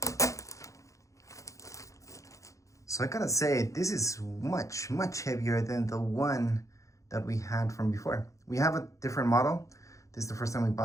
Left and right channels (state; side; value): late; right; 0.15 ms